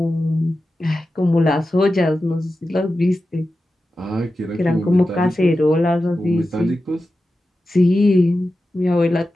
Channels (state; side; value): normal; both; correlation 0.92